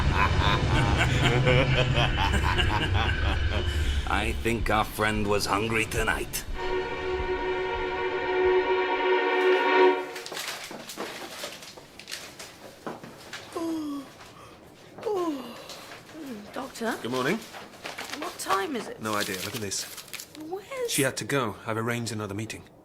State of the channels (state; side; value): identical; both; correlation 1.00